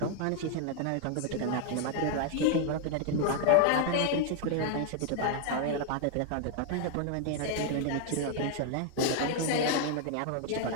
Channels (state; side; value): different; both; correlation 0.00